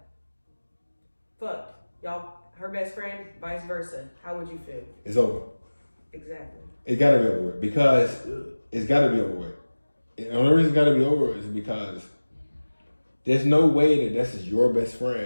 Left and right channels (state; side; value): inverted; both; correlation -1.00